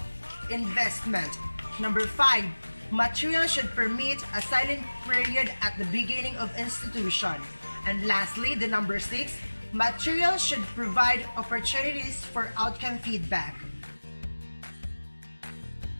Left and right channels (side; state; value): both; inverted; correlation -1.00